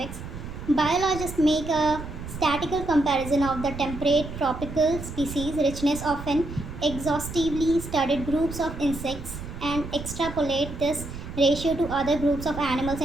Biologists make a statistical comparison of the temperate tropical species richness of an exhaustively studied groups of insects and extrapolate this ratio to other groups of animals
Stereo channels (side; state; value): right; noise; rumble, 10 dB below the sound